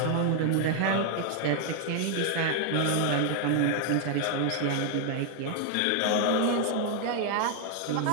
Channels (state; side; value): different; both; correlation 0.00